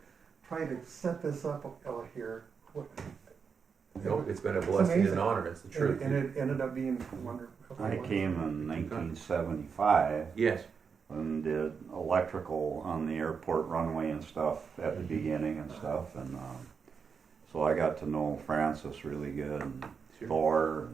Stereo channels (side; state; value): left; quieter; 6.0 dB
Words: try to set this up out here. Nope, it's been a blessing and an amazing. honor, it's the truth. And it ended up being wonderful. I came in 1975 Yes, and did electrical on the airport runway and stuff at the beginning and stuff, and so I got to know Francis really good, and sure. Thor